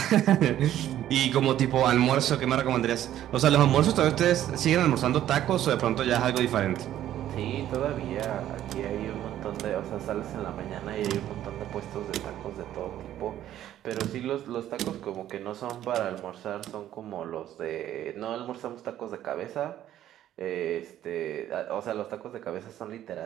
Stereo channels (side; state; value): left; quieter; 12.1 dB